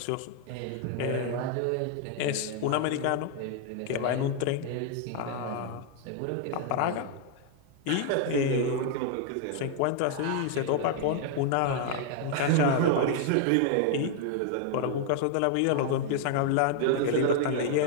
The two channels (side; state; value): both; different; correlation 0.00